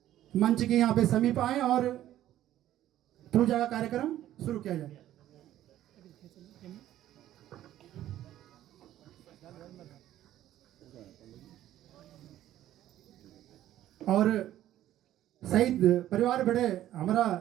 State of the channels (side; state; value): left; quieter; 13.0 dB